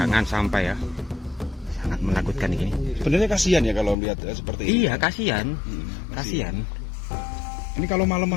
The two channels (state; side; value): drops out; right; at 4.0 s